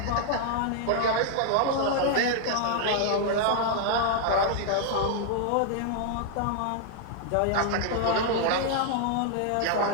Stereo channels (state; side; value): different; both; correlation 0.00